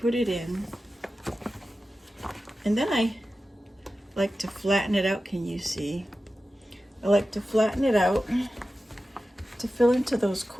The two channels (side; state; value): both; normal; correlation 0.94